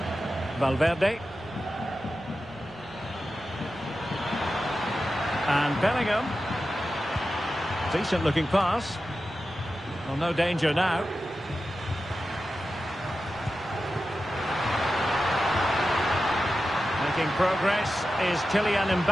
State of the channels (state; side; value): normal; both; correlation 0.92